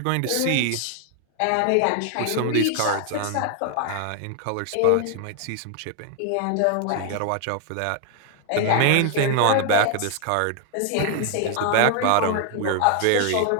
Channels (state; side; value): different; both; correlation 0.00